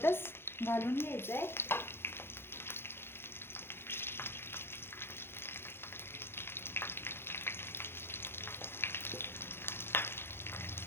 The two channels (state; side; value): late; right; 0.11 ms